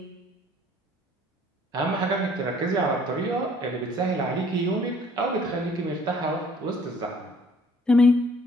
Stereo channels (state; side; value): normal; both; correlation 0.58